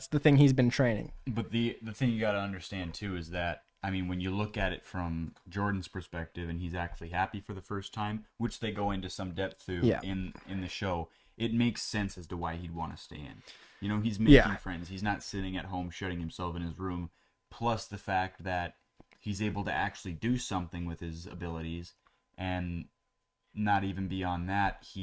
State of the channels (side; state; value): both; identical; correlation 1.00